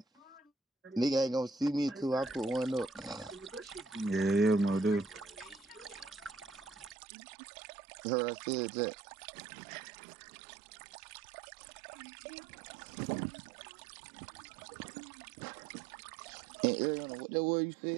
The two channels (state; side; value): drops out; left; at 7.0 s